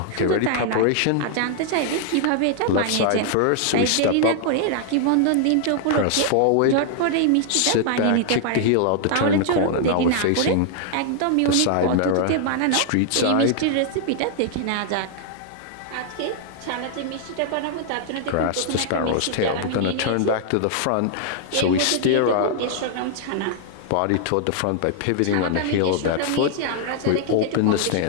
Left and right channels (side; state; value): both; different; correlation -0.01